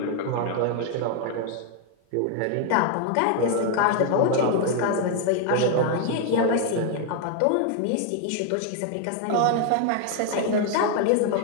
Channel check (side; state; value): both; different; correlation 0.01